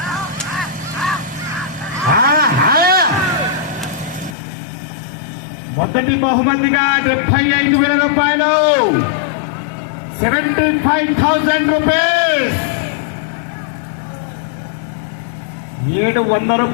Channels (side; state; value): right; drops out; at 4.4 s